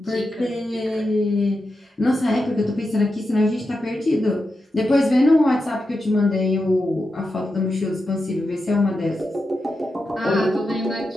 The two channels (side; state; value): both; normal; correlation 0.89